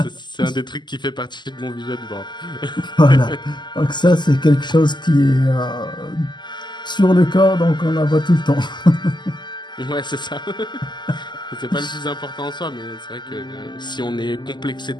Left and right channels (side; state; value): right; late; 0.21 ms